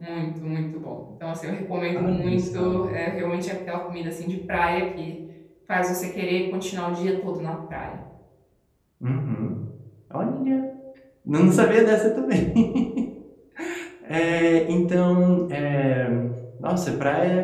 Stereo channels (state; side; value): identical; both; correlation 1.00